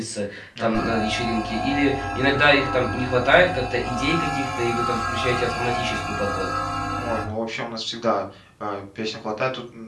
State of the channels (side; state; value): both; identical; correlation 1.00